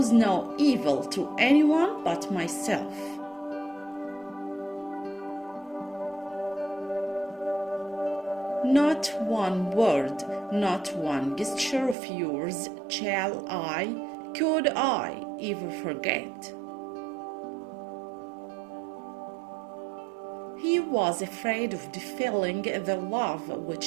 no evil to anyone but myself. Not one word, not one gesture of yours could I ever forget. He was afraid of defilling the love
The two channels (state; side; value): drops out; left; at 12.0 s